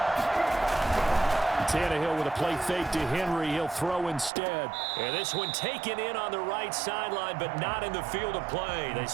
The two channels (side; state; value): left; drops out; at 4.3 s